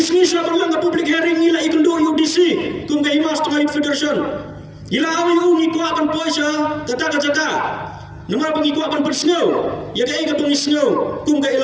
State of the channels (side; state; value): both; identical; correlation 1.00